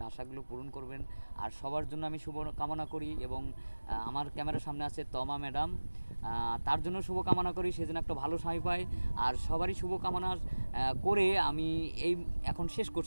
আশাগুলো পূরণ করবেন। আর সবার জন্য আমি শুভ কামনা করি, এবং আমার ক্যামেরার সামনে আছে তমা ম্যাডাম, তার জন্য শুভকামনা করি, সে যেন একটা ভালো স্বামী পায়। আর সবারই শুভকামনা করে আমি এই এখন শেষ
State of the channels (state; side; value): inverted; both; correlation -1.00